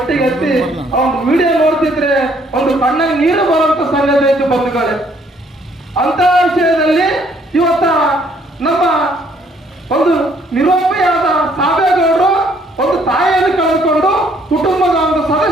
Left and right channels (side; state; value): both; normal; correlation 0.65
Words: ಹತ್ತಿ ಒಂದು ವಿಡಿಯೋ ನೋಡ್ತಿದ್ರೆ ಒಂದು ಕಣ್ಣಾಗ ನೀರು ಬರುವಂತ ಸಂಗತಿ ಆಯ್ತು ಬಂಧುಗಳೇ. ಅಂತ ವಿಷಯದಲ್ಲಿ ಇವತ್ತ ನಮ್ಮ ಒಂದು ನಿರುಪಯೋಗ ಸಾಬೇಗೌಡರು ಒಂದು ತಾಯಿಯನ್ನು ಕಳೆದುಕೊಂಡು ಕುಟುಂಬದ ಒಂದು